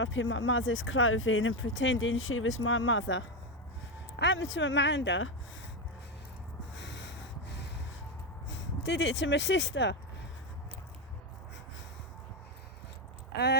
in my mother's clothing and pretending she was my mother. Happened to Amanda. Did it to my sister.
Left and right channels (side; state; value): both; normal; correlation 0.10